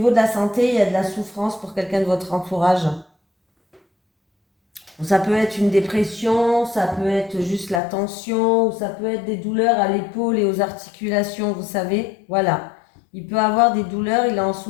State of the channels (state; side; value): drops out; right; at 7.8 s